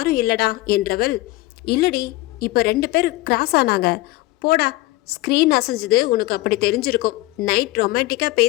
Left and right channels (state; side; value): quieter; right; 18.5 dB